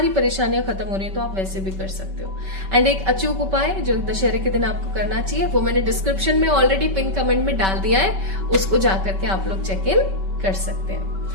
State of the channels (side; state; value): left; late; 5.2 ms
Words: परेशानियां खत्म हो रही है, तो आप वैसे भी कर सकते हो। एंड एक अचूक उपाय जो दशहरे के दिन आपको करना चाहिए, वो मैंने डिस्क्रिप्शन में ऑलरेडी पिन कमेंट में डाल दिया है, उसको जाकर के आप लोग चेक इन कर सकते